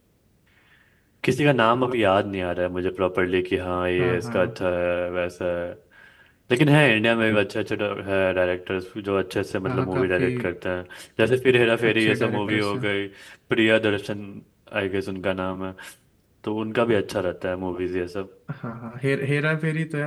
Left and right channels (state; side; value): identical; both; correlation 1.00